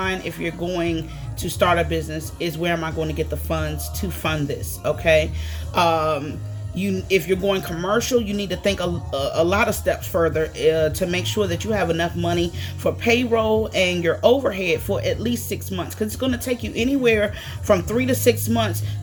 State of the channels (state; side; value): identical; both; correlation 1.00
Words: if you're going to start a business is, where am I going to get the funds to fund this? Okay. if you're going commercial, you need to think a lot of steps further to make sure that you have enough money for payroll and your overhead for at least 6 months, because it's going to take you anywhere from 3 to 6 months